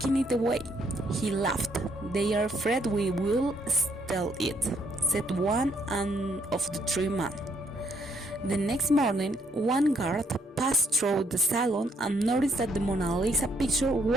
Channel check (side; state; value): both; normal; correlation 0.70